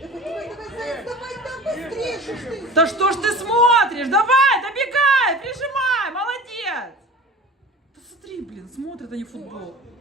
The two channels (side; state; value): both; normal; correlation 0.38